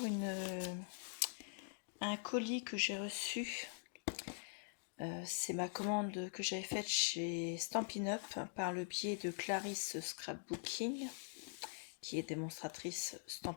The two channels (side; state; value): right; silent; digital silence